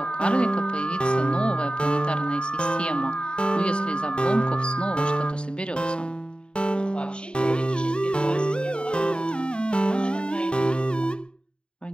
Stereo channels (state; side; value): late; right; 0.052 ms